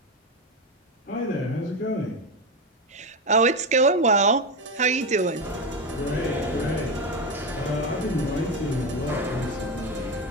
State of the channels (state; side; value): normal; both; correlation 0.15